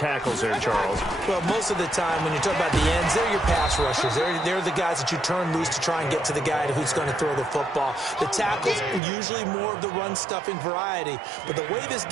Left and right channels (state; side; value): drops out; left; at 9.0 s